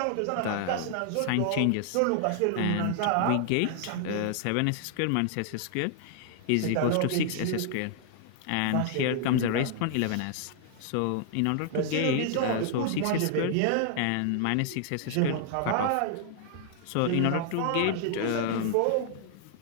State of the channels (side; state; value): both; different; correlation 0.00